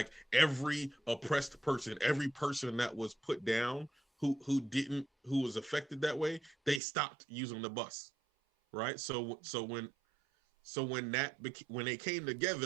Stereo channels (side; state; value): left; drops out; at 6.8 s